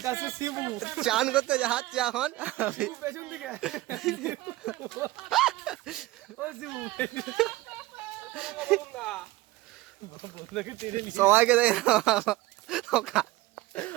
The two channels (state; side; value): quieter; left; 18.0 dB